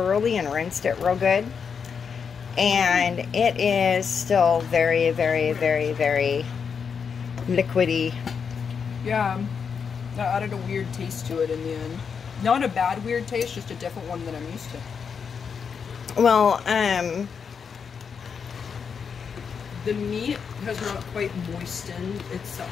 and rinsed it real good. And it is still very, very, very, very liquidy. Yeah, that added a weird taste to it in the end. Not a bad weird taste, just a different one than I'm used to. Well, the meat has not quite moistened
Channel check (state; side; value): quieter; right; 6.4 dB